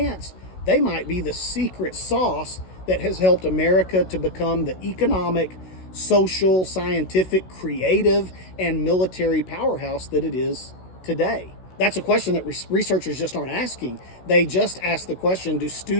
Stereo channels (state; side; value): late; right; 16 ms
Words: they might be the secret sauce that has helped America to become the economic, social, scientific, creative, and military powerhouse that it is today. That's a question that researchers just aren't asking. They just ask the question, do